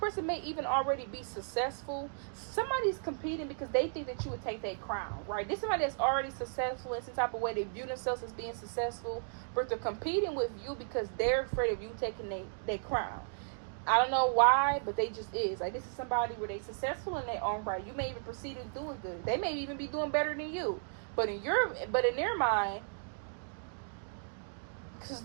may even already be successful. Somebody's competing because they think that you would take their crown, right? This is somebody that's already successful in some type of way. They view themselves as being successful, but they're competing with you because they're afraid of you taking their crown. I don't know why, but they just is. Like, this is somebody where they successful in their own right. You may even proceed as doing good. They may even be doing better than you. But in their mind, because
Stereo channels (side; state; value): left; silent; digital silence